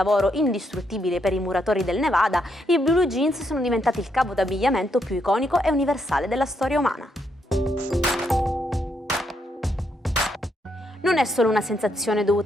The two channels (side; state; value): both; normal; correlation 0.77